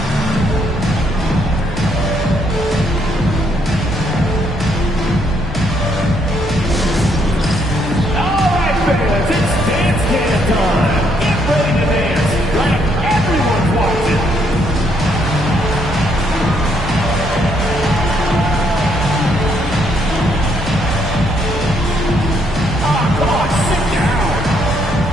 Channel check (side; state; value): both; normal; correlation 0.72